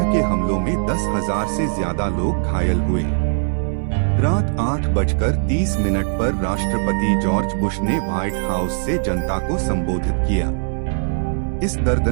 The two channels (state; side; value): silent; left; digital silence